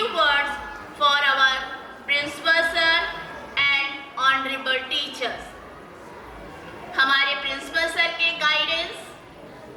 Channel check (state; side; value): identical; both; correlation 1.00